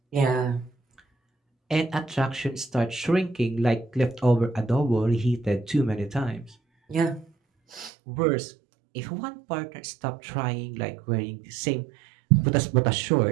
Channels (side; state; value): left; drops out; at 7.9 s